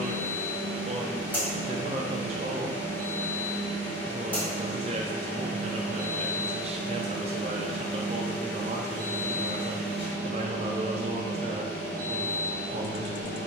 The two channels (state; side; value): normal; both; correlation 0.32